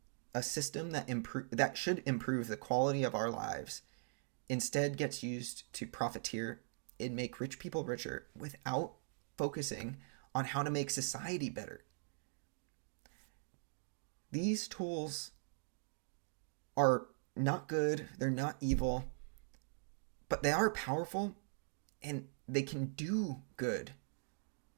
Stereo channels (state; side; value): silent; left; digital silence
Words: a system that should improve the quality of our lives instead gets used to profiteer and make rich people richer without focusing on how to make society better. These tools are not good, they're not evil, but they are powerful and they can do good.